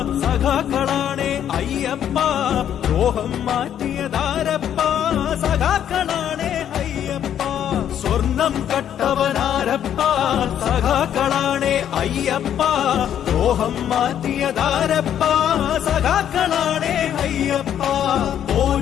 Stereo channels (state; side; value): quieter; right; 9.9 dB